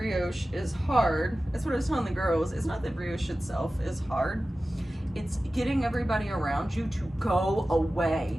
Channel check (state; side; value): normal; both; correlation 0.95